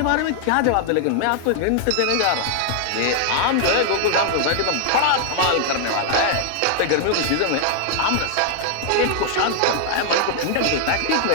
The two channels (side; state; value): both; different; correlation 0.00